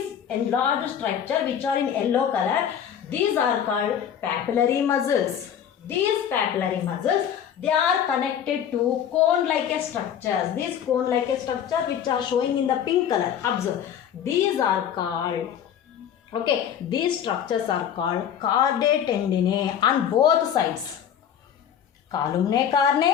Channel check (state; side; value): quieter; right; 9.1 dB